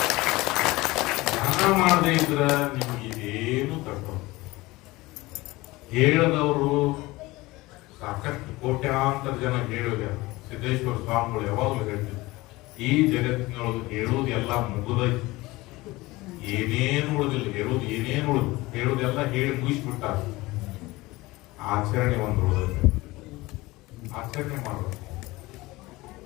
ಧ್ಯಾನ ಮಾಡದೇ ಇದ್ರ ನಿಮ್ಗೆ ಇದೇನು ತಕ್ಕ. ಹೇಳದವರು ಸಾಕಷ್ಟು ಕೋಟ್ಯಾಂತರ ಜನ ಹೇಳಿದ ಸಿದ್ದೇಶ್ವರ ಸ್ವಾಮಿಗಳು ಯಾವಾಗಲೂ ಹೇಳ್ತಿದ್ರು, ಈ ಜಗತ್ತಿನೊಳಗೆ ಹೇಳುವುದು ಎಲ್ಲ ಮುಗಿದೈತಿ, ಏನೇನು ಉಳಿದಿಲ್ಲ, ಹೇಳುವುದು ಏನೇನು ಉಳಿದು ಹೇಳುವುದೆಲ್ಲ ಹೇಳಿ ಮುಗಿಸ್ಬಿಟ್ಟ. ಆಚರಣೆ ಒಂದು ಉಳಿದೈತೆ. ಆಚರಣೆ ಮಾಡೋದು,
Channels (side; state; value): right; quieter; 20.6 dB